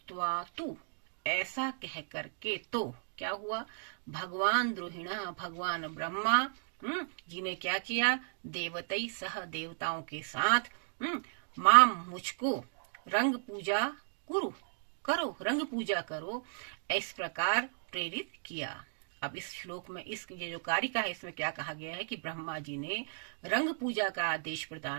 तु, ऐसा कह करके, तो क्या हुआ? भगवान द्रोहिणा, भगवान ब्रह्मा जी ने क्या किया? देवतई सह, देवताओं के साथ, माम मुझको रंग पूजा करो, रंग पूजा करो, इस प्रकार प्रेरित किया। अब इस श्लोक में ये जो कारिका है इसमें क्या कहा गया है कि ब्रह्मा जी ने रंग पूजा का आदेश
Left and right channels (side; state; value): left; silent; digital silence